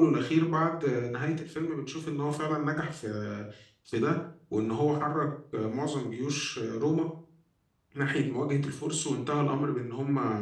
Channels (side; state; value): both; identical; correlation 1.00